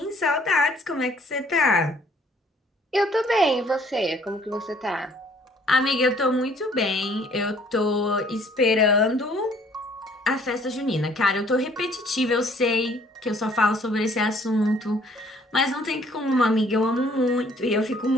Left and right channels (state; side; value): normal; both; correlation 0.59